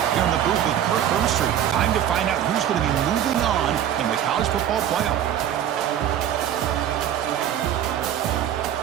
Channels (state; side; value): quieter; left; 10.4 dB